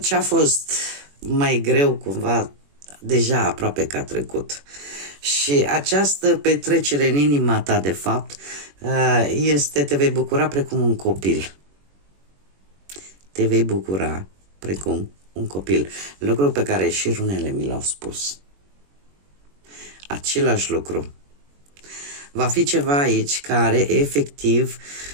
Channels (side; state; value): left; late; 21 ms